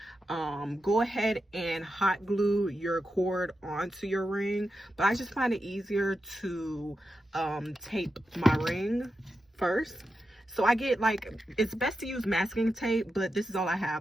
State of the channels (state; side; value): normal; both; correlation 0.89